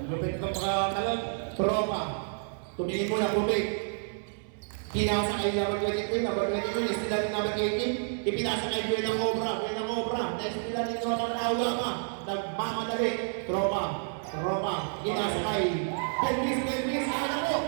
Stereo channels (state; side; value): silent; left; 58 dB below the other